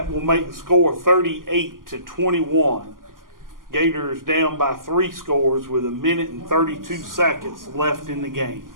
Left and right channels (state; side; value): late; left; 0.91 ms